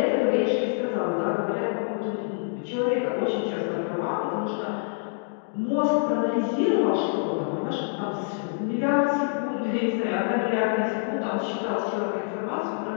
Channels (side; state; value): right; silent; digital silence